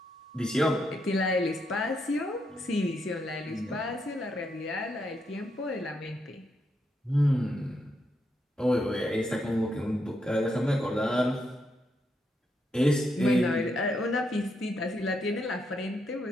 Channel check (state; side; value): normal; both; correlation 0.80